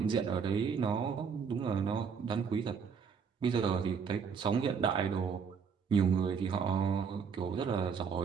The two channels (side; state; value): left; quieter; 6.3 dB